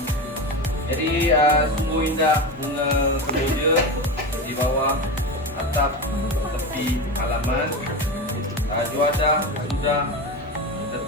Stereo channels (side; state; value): both; normal; correlation 0.22